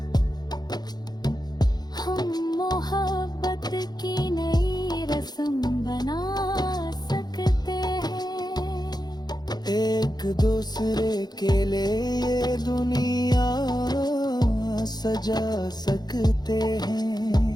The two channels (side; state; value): right; late; 0.20 ms